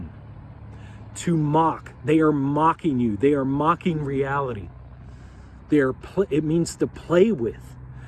To mock. They are mocking you. They are mocking reality. It means to play with.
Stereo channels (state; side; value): identical; both; correlation 1.00